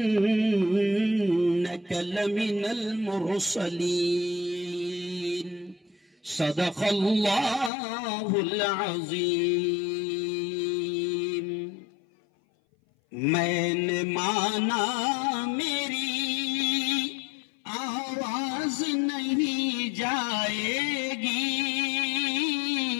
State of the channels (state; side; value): drops out; right; at 7.7 s